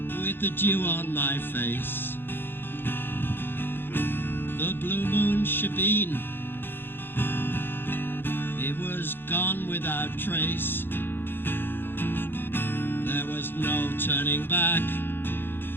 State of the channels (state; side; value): late; right; 0.10 ms